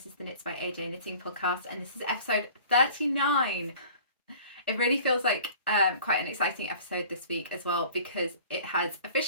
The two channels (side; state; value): both; inverted; correlation -0.46